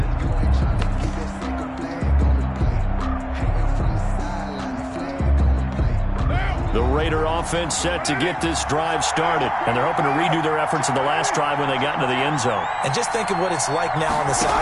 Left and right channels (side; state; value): both; identical; correlation 1.00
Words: The Raider offense set to get this drive started, and they're hoping to redo their efforts in the last drive when they got into the end zone. And just think of what it's like now on the